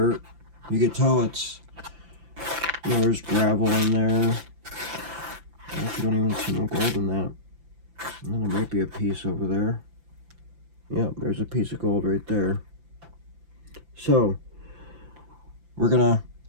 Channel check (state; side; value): late; left; 5.9 ms